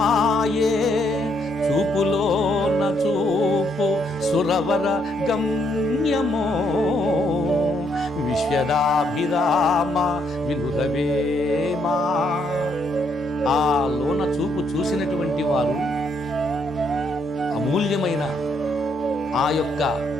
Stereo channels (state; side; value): normal; both; correlation 0.73